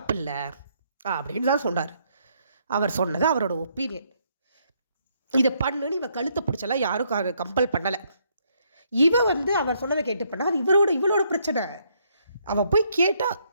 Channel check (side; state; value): both; inverted; correlation -0.72